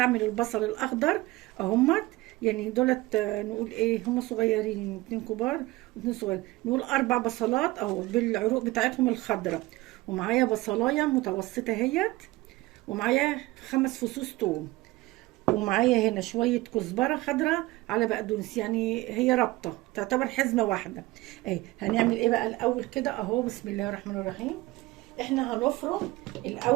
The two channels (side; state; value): left; quieter; 19.7 dB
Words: البصل الاخضر اهمت. يعني دولت نقول ايه هم صغيرين، اتنين كبار واتنين صغيرين، نقول 4 بصلات اهو بالعروق بتاعتهم الخضراء. ومعايا بصلايه متوسطه اهيت. ومعايا 5 فصوص توم. ومعايا هنا شوية كزبرة خضراء على بقدونس، يعني هي رابطة تعتبر حزمة واحدة. اهي هنعمل ايه بقى الاول كده اهو. بسم الله الرحمن الرحيم. احنا هنفرم